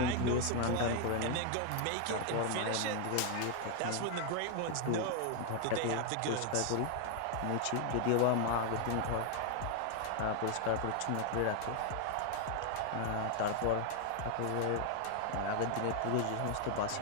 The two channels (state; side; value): different; both; correlation 0.00